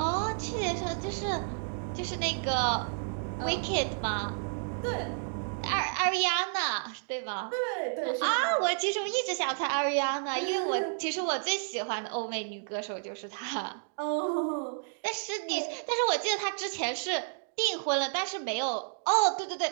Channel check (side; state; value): left; silent; digital silence